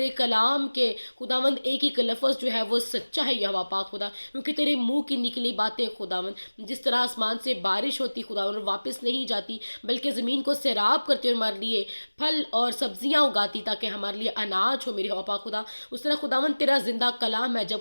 کلام کے خداون ایک ایک لفظ جو ہے وہ سچا ہے یہوہ پاک خدا، کیونکہ تیرے منہ کی نکلی باتیں خداون جس طرح آسمان سے بارش ہوتی خداون اور واپس نہیں جاتی، بلکہ زمین کو سیراب کرتے اور ہمارے لیے پھل اور سبزیاں اگاتی تاکہ ہمارے لیے اناج ہو میرے یہوہ پاک خدا. اس طرح خداون تیرا زندہ کلام ہے،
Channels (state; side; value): inverted; both; correlation -1.00